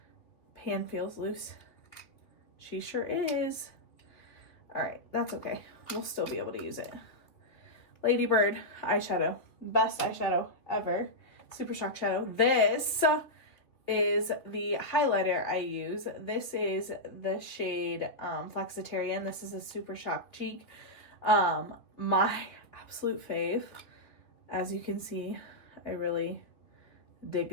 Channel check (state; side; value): late; right; 2.6 ms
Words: Pan feels loose. She sure is. Alright, that's okay. We'll still be able to use it. Lady Bird eyeshadow. Best eyeshadow ever. Super Shock Shadow. This is the highlighter I use. This is the shade Flexitarian. This is a Super Shock Cheek. My absolute fave. As you can see, I really